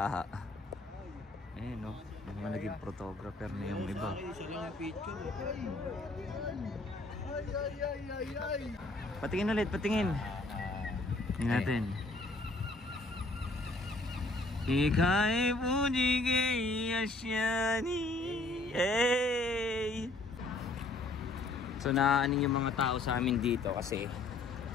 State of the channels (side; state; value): right; quieter; 3.0 dB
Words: Ayan no, mga naging photographer na yung iba. Patingin ulit, patingin. Tingnan natin. Ika'y puji kay asyani. Hey! So naaning yung mga tao sa amin dito kasi